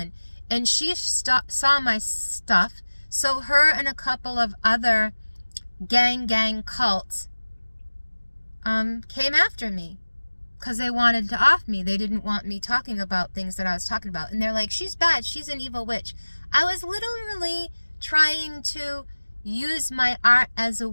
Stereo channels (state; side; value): inverted; both; correlation -1.00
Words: And she saw my stuff, so her and a couple of other gang cults came after me because they wanted to off me. They didn't want me talking about things that I was talking about. And they're like, she's bad, she's an evil witch. I was literally trying to use my art as a